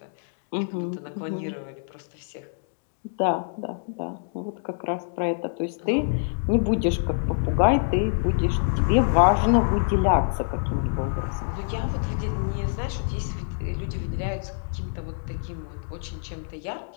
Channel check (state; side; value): silent; right; digital silence